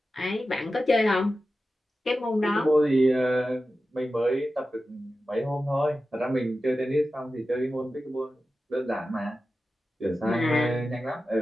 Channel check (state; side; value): normal; both; correlation 0.93